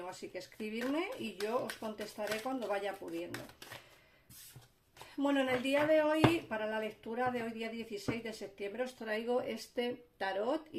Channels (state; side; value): identical; both; correlation 1.00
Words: así que escribidme y yo os contestaré cuando vaya pudiendo. Bueno, en el día de hoy, para la lectura de hoy, día 16 de septiembre, os traigo este tarot.